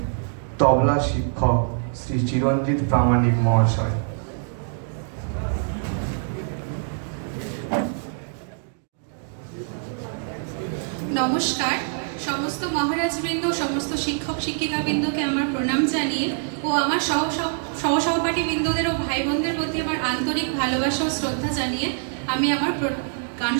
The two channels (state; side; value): silent; left; digital silence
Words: তবলা শিক্ষক শ্রী চিরঞ্জিত প্রামাণিক মহাশয়। নমস্কার। সমস্ত মহারাজবৃন্দ, সমস্ত শিক্ষক শিক্ষিকাবৃন্দকে আমার প্রণাম জানিয়ে ও আমার সহসহপাঠী বৃন্দদের ও ভাই বোনদের প্রতি আমার আন্তরিক ভালোবাসা ও শ্রদ্ধা জানিয়ে আমি আমার গান